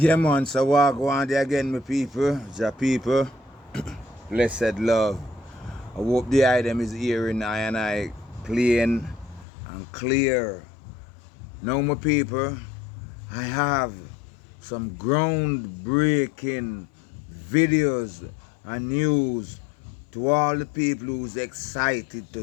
man, so walk one day again, my people, ja people, blessed love. I hope the item is hearing I and I plain and clear. Now, my people, I have some groundbreaking videos and news to all the people who's excited to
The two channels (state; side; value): drops out; right; at 9.5 s